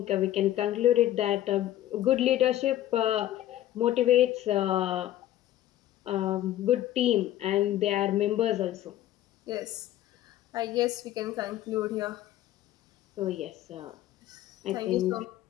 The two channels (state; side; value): quieter; right; 13.3 dB